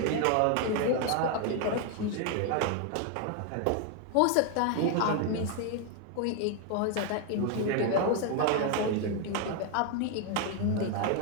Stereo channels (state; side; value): different; both; correlation 0.00